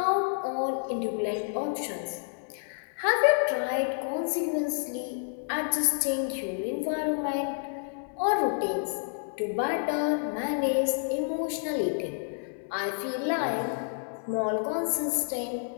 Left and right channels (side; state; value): right; silent; 58 dB below the other